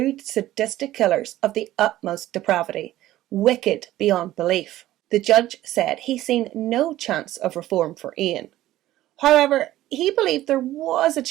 sadistic killers of the utmost depravity, wicked beyond belief. The judge said he seen no chance of reform for Ian. However, he believed there was a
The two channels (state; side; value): quieter; left; 14.8 dB